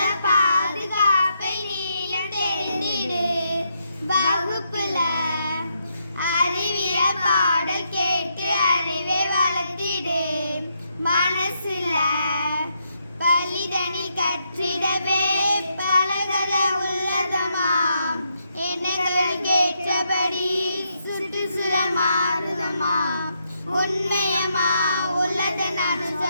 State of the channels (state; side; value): inverted; both; correlation -0.79